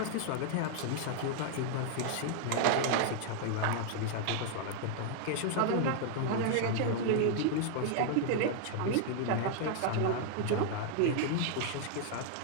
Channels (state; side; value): different; both; correlation 0.00